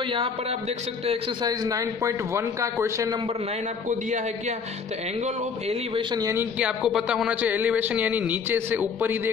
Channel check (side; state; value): right; quieter; 5.7 dB